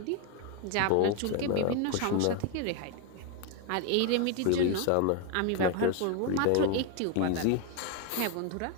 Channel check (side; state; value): both; different; correlation 0.01